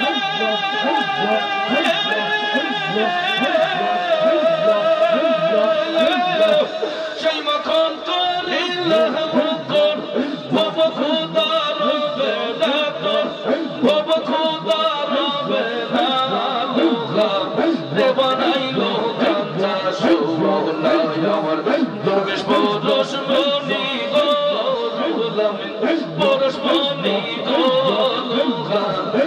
জয় মাখন করিলে ভক্তর ভব খুদার বেদাতর ভব খুদার বেদাতর রে বানাইলো কাঞ্চা সোনা আমার দরবেশ পুরুষ মনি গো পুরুষ মনি গো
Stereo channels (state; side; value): identical; both; correlation 1.00